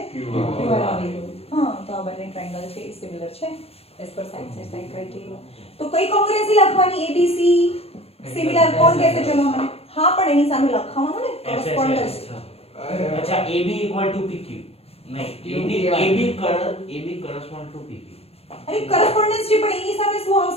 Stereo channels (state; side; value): late; right; 0.29 ms